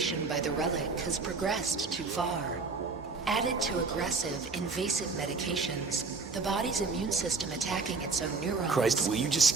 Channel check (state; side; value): quieter; left; 4.3 dB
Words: by the relic has progressed too far. Added to aggressive, invasive medications, the body's immune system attacking its own neurons... Christ, will you just